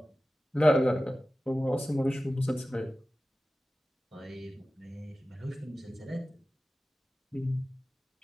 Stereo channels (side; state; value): both; normal; correlation 0.96